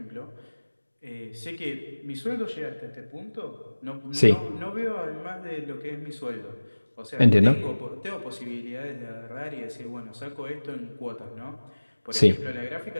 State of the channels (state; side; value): inverted; both; correlation -1.00